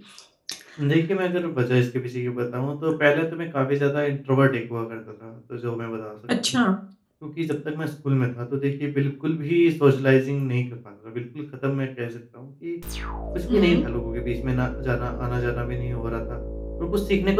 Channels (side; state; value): both; identical; correlation 1.00